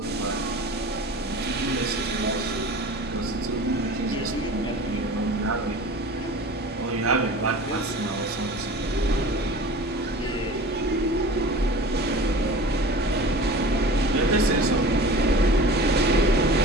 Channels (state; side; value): normal; both; correlation 0.39